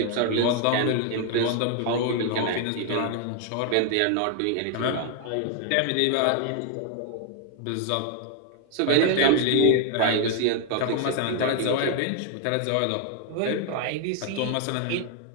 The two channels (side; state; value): both; different; correlation 0.00